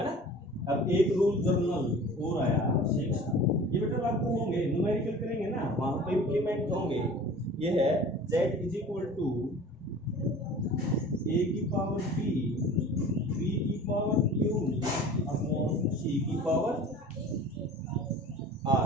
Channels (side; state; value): both; normal; correlation 0.42